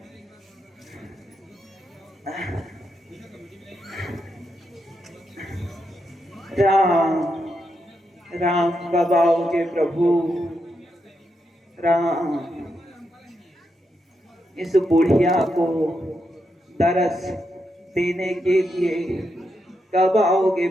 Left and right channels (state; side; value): normal; both; correlation 0.83